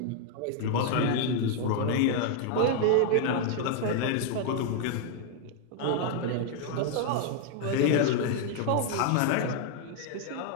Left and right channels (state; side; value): different; both; correlation 0.00